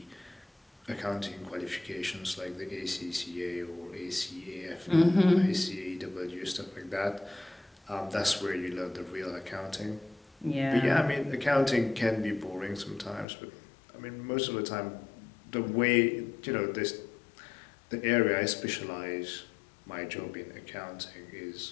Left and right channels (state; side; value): drops out; right; at 13.2 s